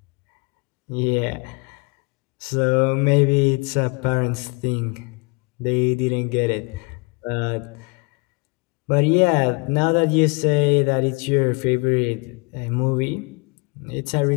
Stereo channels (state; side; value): quieter; right; 30.2 dB